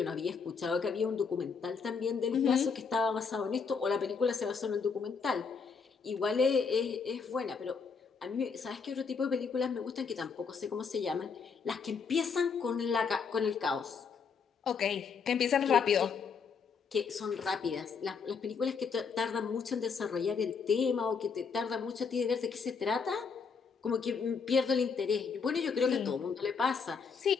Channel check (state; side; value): quieter; right; 5.6 dB